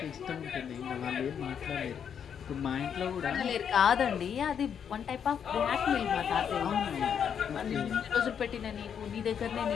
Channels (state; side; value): quieter; right; 7.9 dB